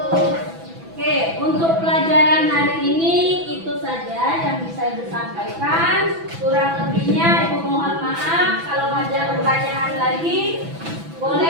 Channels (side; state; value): left; late; 6.0 ms